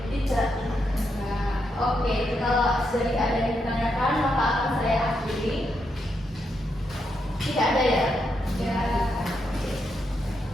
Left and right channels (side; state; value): both; normal; correlation 0.81